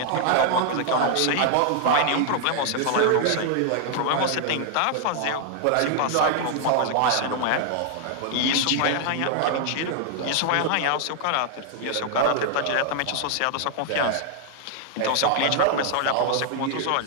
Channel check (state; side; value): different; both; correlation 0.00